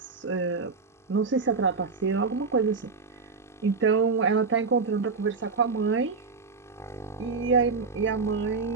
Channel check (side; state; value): left; quieter; 4.6 dB